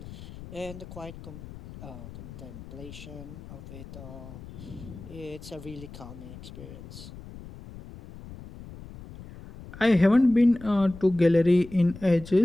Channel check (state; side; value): noise; left; rumble, 15 dB below the sound